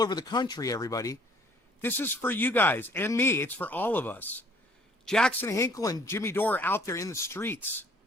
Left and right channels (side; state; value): both; normal; correlation 0.58